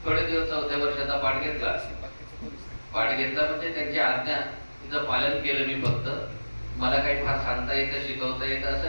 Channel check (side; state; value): both; inverted; correlation -1.00